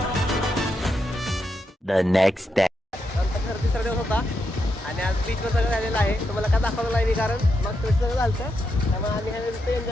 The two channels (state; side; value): normal; both; correlation 0.83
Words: The next day. आमचा खरं 3रा दिवस होता आणि आज बीचवर सगळं झालेलं आहे. तुम्हाला काय दाखवलं नाही मी कारण मग थोडं सगळं झालं त्यामुळे आम्ही ह्या